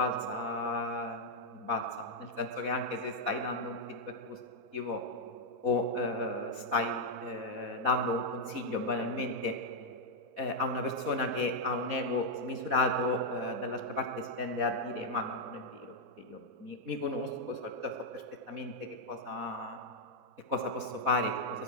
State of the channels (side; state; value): left; late; 4.1 ms